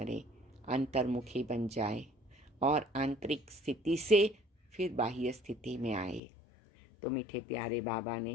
अंतर्मुखी बन जाए और आंतरिक स्थिति से फिर बाह्य स्थिति में आए। तो मीठे प्यारे बाबा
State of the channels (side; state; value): right; drops out; at 6.2 s